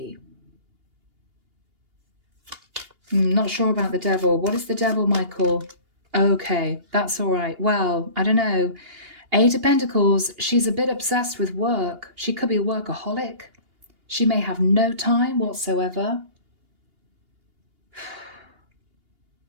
Not sure about the Devil. What is the Devil, Michael? Okay, that's all right. Well, I don't know. Eight of Pentacles, she's a bit obsessed with work. She could be a workaholic. She may have no time whatsoever.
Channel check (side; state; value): left; late; 2.8 ms